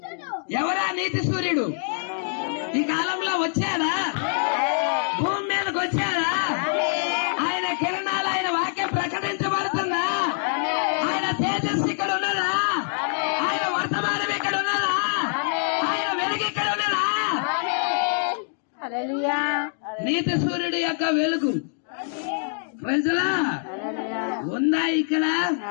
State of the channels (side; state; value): right; silent; 62 dB below the other